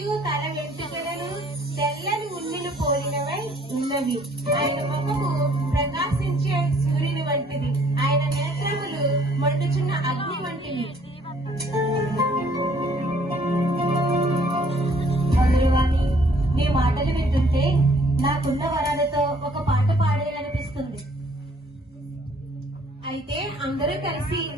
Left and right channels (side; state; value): both; normal; correlation 0.60